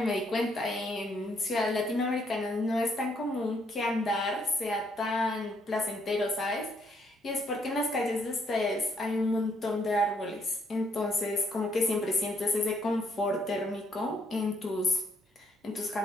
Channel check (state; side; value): normal; both; correlation 0.71